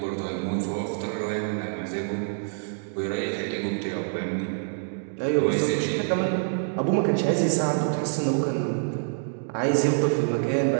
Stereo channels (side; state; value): left; silent; digital silence